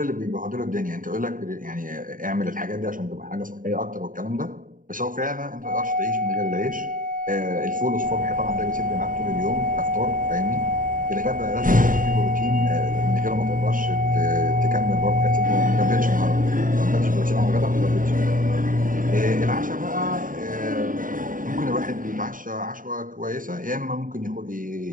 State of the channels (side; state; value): left; late; 0.39 ms